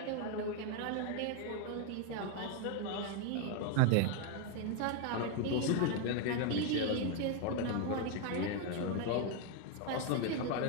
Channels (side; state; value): both; different; correlation 0.01